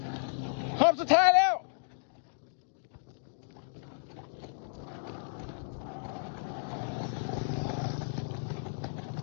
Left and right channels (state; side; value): silent; right; digital silence